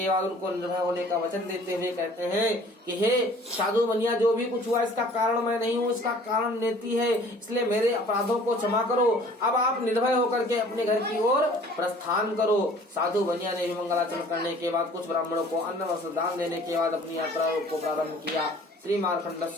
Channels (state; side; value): normal; both; correlation 0.52